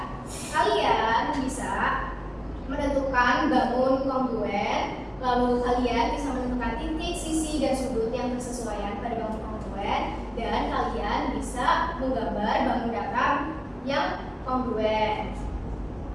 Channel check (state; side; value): identical; both; correlation 1.00